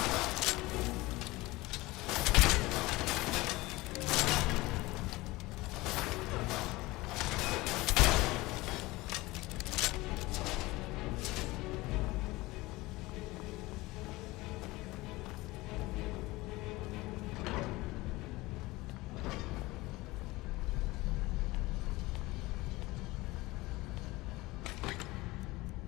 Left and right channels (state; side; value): quieter; right; 20.6 dB